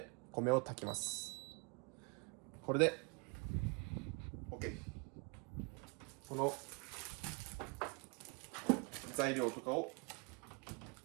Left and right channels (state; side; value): quieter; left; 33.0 dB